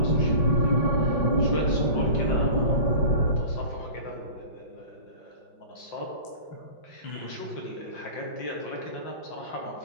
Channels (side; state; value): right; late; 5.7 ms